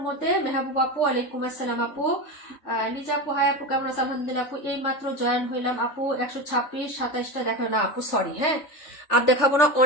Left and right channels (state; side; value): late; right; 3.4 ms